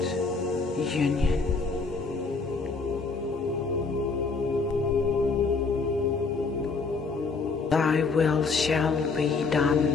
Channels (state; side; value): quieter; right; 4.4 dB